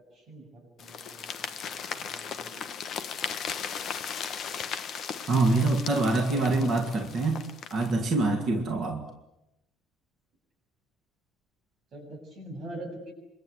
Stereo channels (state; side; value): normal; both; correlation 0.69